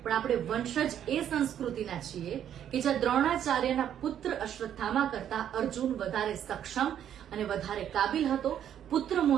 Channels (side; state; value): left; quieter; 9.9 dB